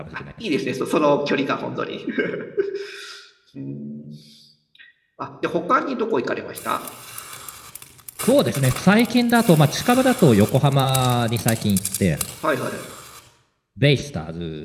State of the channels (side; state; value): both; identical; correlation 1.00